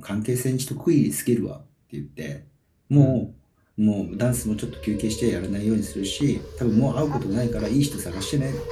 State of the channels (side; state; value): both; identical; correlation 1.00